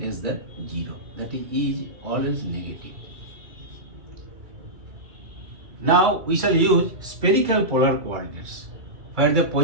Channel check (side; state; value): left; late; 2.3 ms